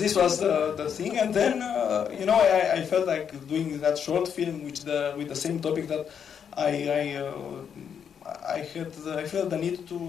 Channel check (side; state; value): right; quieter; 7.7 dB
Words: was the thing, and then I felt like doing that short film with the same topic that I felt the need